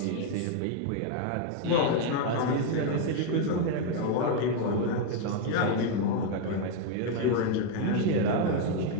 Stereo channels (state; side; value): different; both; correlation 0.01